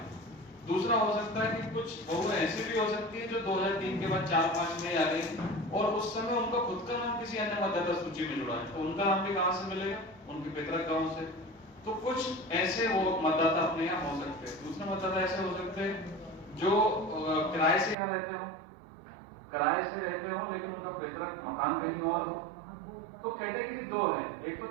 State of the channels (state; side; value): drops out; left; at 17.9 s